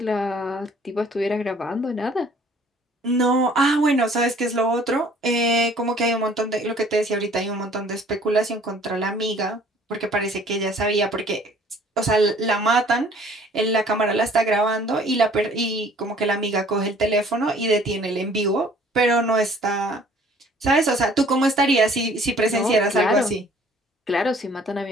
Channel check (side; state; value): both; normal; correlation 0.55